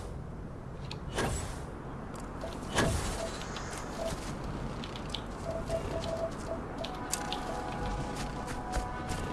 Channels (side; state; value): both; identical; correlation 1.00